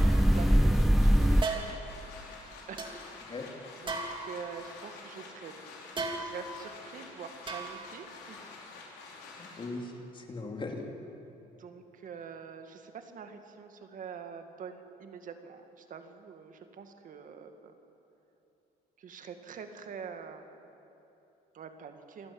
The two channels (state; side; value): normal; both; correlation 0.90